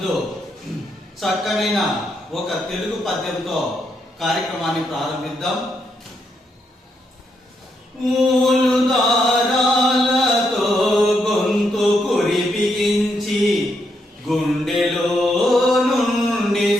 చక్కనైన ఒక తెలుగు పద్యంతో కార్యక్రమాన్ని ప్రారంభిద్దాం. మూలు దారాలతో గొంతు కురిపిగించి గుండెలో నుండి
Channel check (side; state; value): both; normal; correlation 0.79